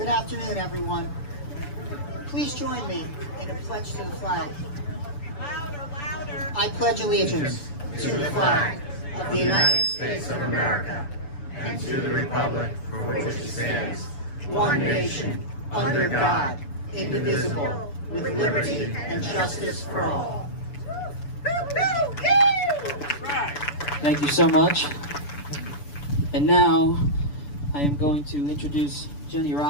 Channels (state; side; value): late; right; 7.0 ms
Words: afternoon, everyone. Please join me in a pledge to the flag. Louder, louder. I pledge allegiance to the flag of the United States of America and to the republic for which it stands, one nation, under God, indivisible, with liberty and justice for all. Thank you so much. And now I am going to introduce Jenny